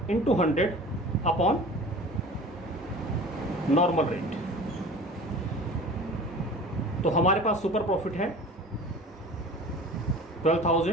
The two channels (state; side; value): normal; both; correlation 0.40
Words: into 100 upon normal rate. तो हमारे पास सुपर प्रॉफिट है